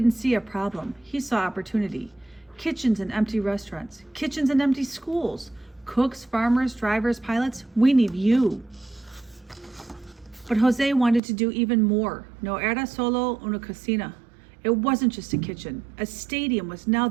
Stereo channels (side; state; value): left; drops out; at 11.2 s